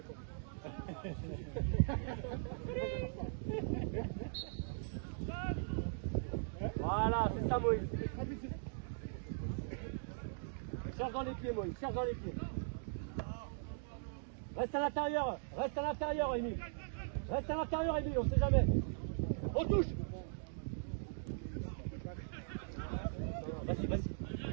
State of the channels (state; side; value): silent; left; digital silence